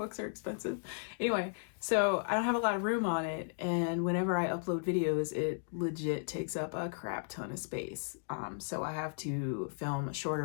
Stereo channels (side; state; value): right; silent; digital silence